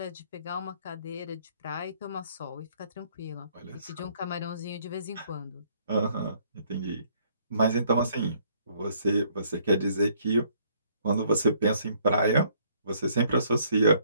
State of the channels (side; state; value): both; inverted; correlation -0.64